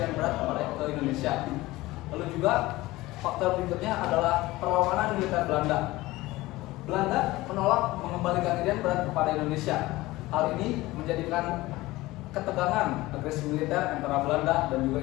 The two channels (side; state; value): right; quieter; 18.9 dB